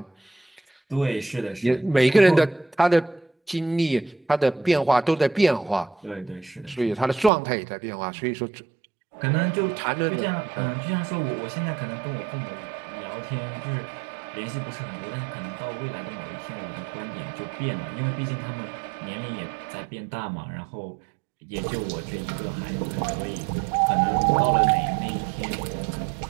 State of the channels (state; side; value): drops out; left; at 7.3 s